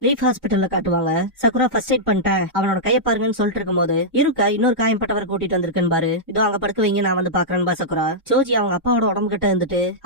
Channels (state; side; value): normal; both; correlation -0.10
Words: லீஃப் ஹாஸ்பிட்டல்ல காட்டுவாங்க. சக்குரா ஃபர்ஸ்ட் எய்ட் பண்ணிட்டேன், அவனோட கைய பாருங்கன்னு சொல்லிட்டு இருக்கும் போது இருக்கா இன்னொரு காயம்பட்டவரை கூட்டிட்டு வந்திருக்கேன் பாரு, இதோ அங்க படுக்க வைங்க, நான் வந்து பாக்குறேன் பா சக்குரா. சோஜி அவங்க அப்பாவோட உடம்பு கிட்ட இருந்துட்டு